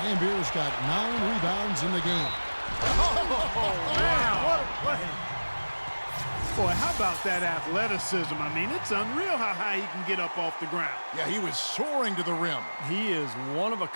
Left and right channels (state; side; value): inverted; both; correlation -1.00